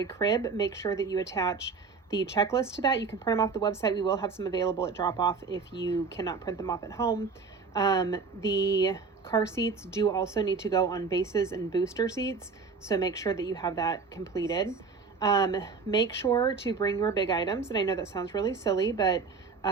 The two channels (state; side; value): quieter; left; 4.9 dB